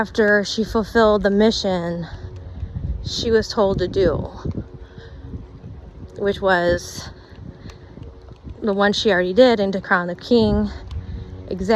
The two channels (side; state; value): both; identical; correlation 1.00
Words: she fulfilled the mission she was told to do, which was the one she already did, and to crown the king